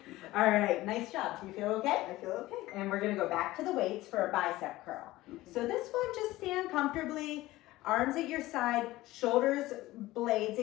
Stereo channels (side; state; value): right; quieter; 17.5 dB